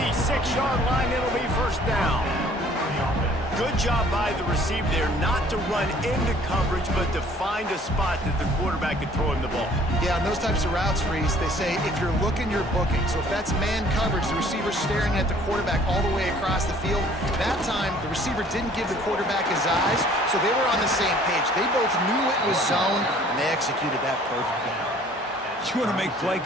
line. It'll be 1st down. Good job by the receiver there not to run into coverage, but to find a spot that the quarterback could throw him the ball. Yeah, on those types of routes, Reese, they say if you're looking, you're booking. So if that's man coverage, the receiver's staring at the quarterback all the way across the field. That time, the receiver didn't give the quarterback his eyes, so they were on the same page. They both knew it was zone, and they executed that perfectly. You want to make play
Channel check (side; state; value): both; normal; correlation 0.55